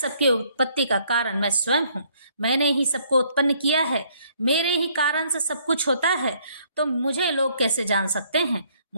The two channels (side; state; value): both; inverted; correlation -0.65